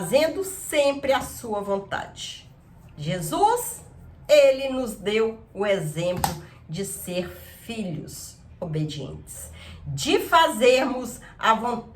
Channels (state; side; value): identical; both; correlation 1.00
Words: sempre a sua vontade. Jesus, ele nos deu o exemplo de ser filhos obedientes, de fazermos a